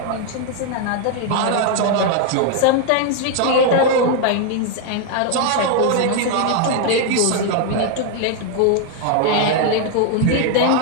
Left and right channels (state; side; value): different; both; correlation 0.00